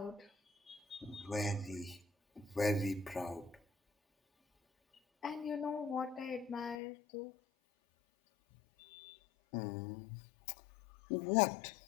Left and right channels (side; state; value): right; drops out; at 6.8 s